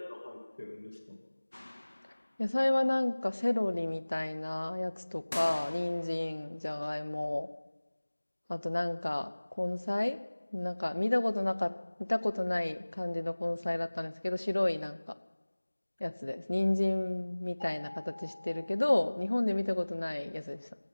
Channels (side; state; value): both; inverted; correlation -1.00